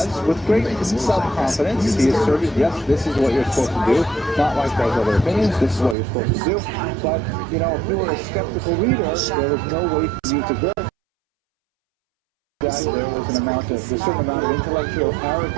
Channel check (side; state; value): left; drops out; at 6.0 s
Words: with great self-confidence. He asserted, yes, this is what you're supposed to do, not like those other opinions, this is what you're supposed to do. But, you know, if you were a skeptical reader, there was no way for you to verify that there was a certain amount of intellectual